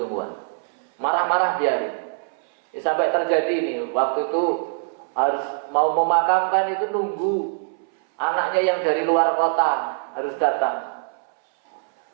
Marah-marah biarin. Ya, sampai terjadi ini, waktu itu harus mau memakamkan itu nunggu anaknya yang dari luar kota harus datang.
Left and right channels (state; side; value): silent; left; 62 dB below the other